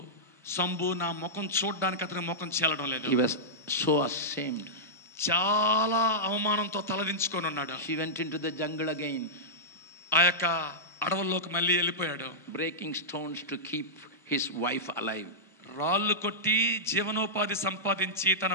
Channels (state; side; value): normal; both; correlation -0.12